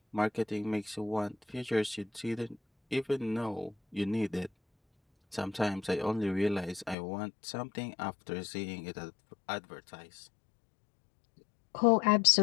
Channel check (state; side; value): drops out; right; at 7.0 s